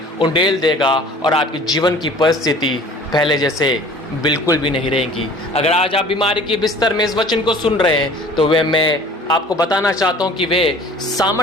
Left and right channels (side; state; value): both; normal; correlation 0.48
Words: उंडेल देगा और आपके जीवन की परिस्थिति पहले जैसे बिल्कुल भी नहीं रहेगी। अगर आज आप बीमारी के बिस्तर में इस वचन को सुन रहे हैं तो वे मैं आपको बताना चाहता हूं कि वे